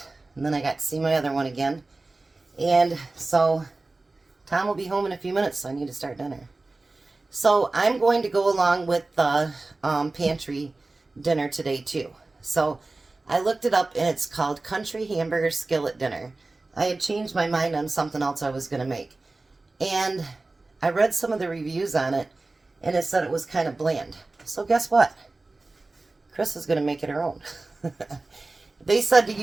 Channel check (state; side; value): quieter; left; 3.3 dB